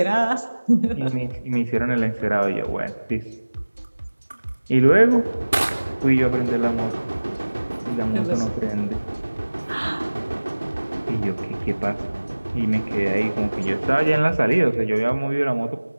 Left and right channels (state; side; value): inverted; both; correlation -1.00